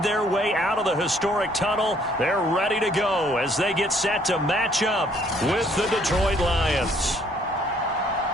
their way out of the historic tunnel. They're ready to go as they get set to match up with the Detroit Lions.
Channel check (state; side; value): normal; both; correlation 0.63